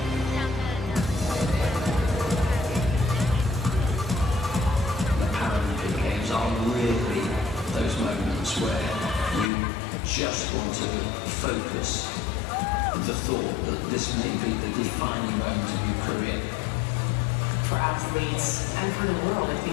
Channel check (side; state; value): right; drops out; at 9.5 s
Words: The Paralympic Games are really those moments where you just want to focus the thought that this may be the defining moment of your career. For athletes and for the world, I